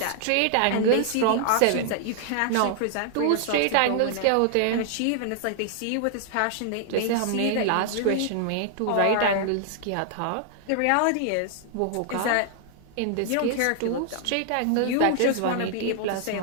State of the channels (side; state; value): both; different; correlation 0.00